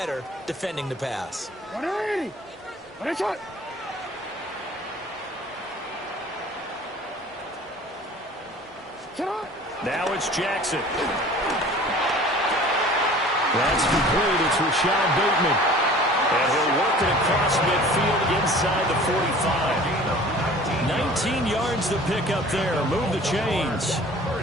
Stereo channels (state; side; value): normal; both; correlation 0.46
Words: defending the pass? 180. Now it's Jackson. That's complete. It's Rashad Bateman. And he'll work it across midfield inside the 45. 19 yards to pick up there. Move the chains.